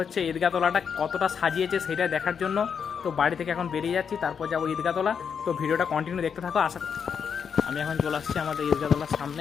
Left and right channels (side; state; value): right; quieter; 6.9 dB